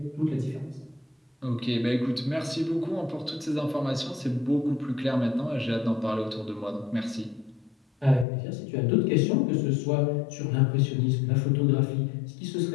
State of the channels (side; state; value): right; drops out; at 8.2 s